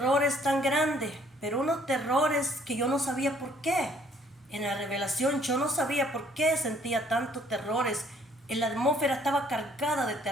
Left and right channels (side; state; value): both; normal; correlation 0.62